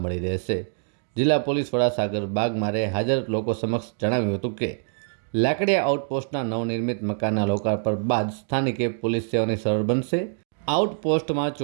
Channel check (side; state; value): left; silent; digital silence